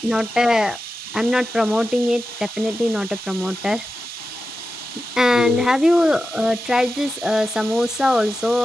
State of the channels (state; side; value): normal; both; correlation 0.92